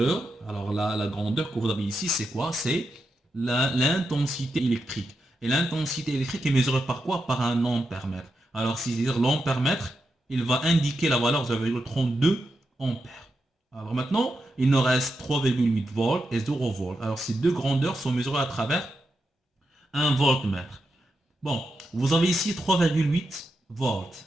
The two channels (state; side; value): normal; both; correlation 0.86